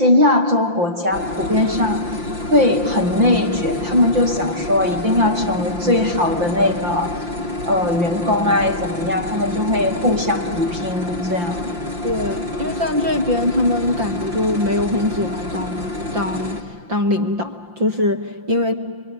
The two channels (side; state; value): left; late; 5.8 ms